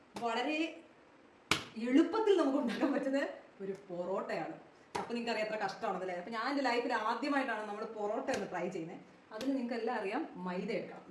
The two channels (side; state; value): both; identical; correlation 1.00